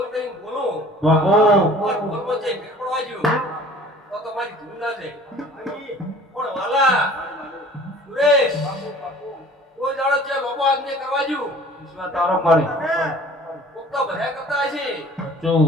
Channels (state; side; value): normal; both; correlation 0.48